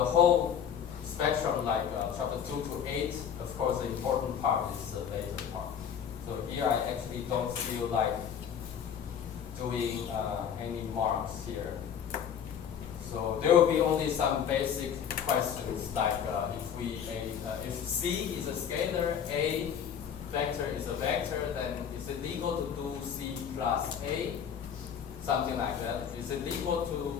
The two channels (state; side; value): quieter; right; 8.2 dB